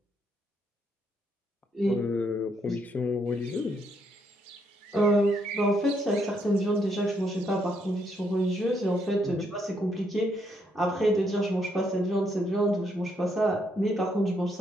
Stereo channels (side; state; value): both; normal; correlation 0.74